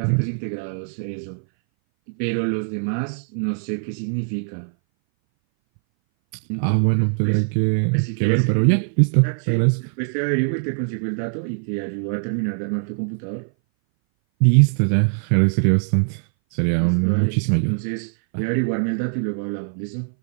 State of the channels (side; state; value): left; silent; 60 dB below the other